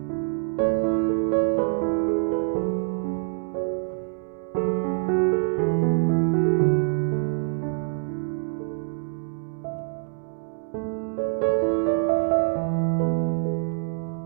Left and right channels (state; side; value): silent; left; 61 dB below the other